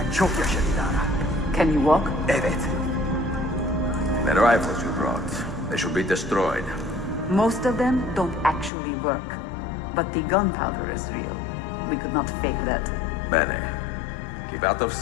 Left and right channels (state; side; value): drops out; right; at 8.7 s